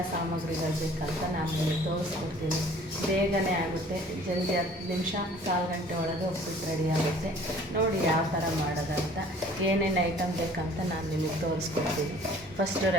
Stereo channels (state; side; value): normal; both; correlation 0.51